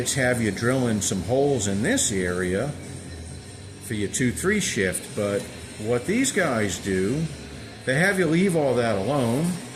have you drilling some holes in this area for your 2-3 shift, but what these guys do, they have you leave all that alone,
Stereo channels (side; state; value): both; identical; correlation 1.00